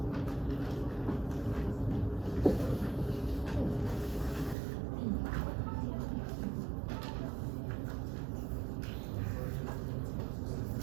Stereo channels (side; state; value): left; drops out; at 4.5 s